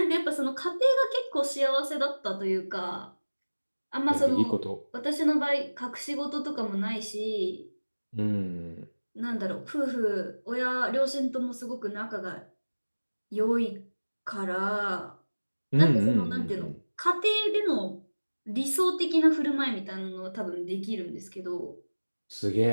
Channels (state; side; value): inverted; both; correlation -1.00